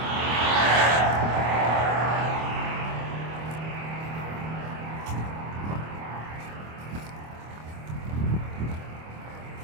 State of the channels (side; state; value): left; late; 25 ms